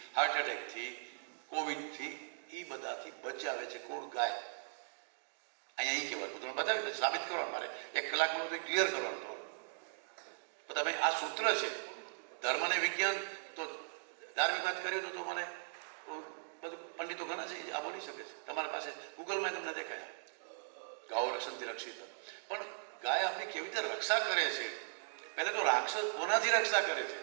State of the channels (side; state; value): left; silent; digital silence